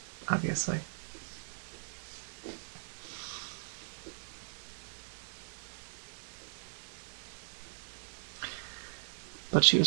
obviously. But she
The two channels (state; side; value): silent; left; digital silence